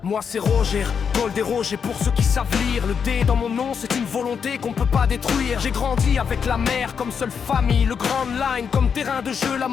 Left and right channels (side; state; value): right; quieter; 6.7 dB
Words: Moi c'est Roger, Gold et Roger pour ceux qui savent lire. Le D dans mon nom c'est une volonté qu'on peut pas détruire. J'ai grandi avec la mer comme seule famille, le Grand Line comme terrain de jeu, la